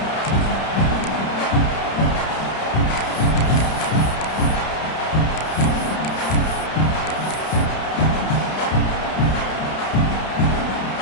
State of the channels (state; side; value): late; right; 31 ms